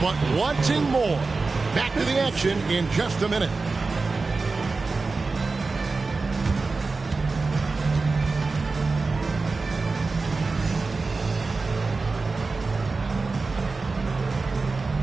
but wanting more. Back to the action in just a minute.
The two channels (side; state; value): left; quieter; 4.0 dB